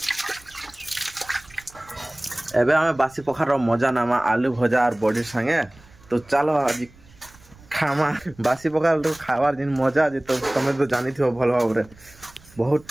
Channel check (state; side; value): noise; right; rumble, 25 dB below the sound